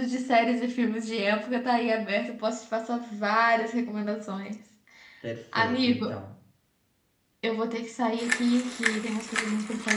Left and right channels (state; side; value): identical; both; correlation 1.00